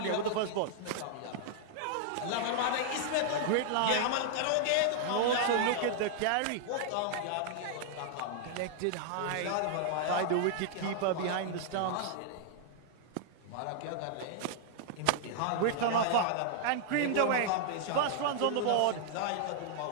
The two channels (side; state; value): both; different; correlation -0.01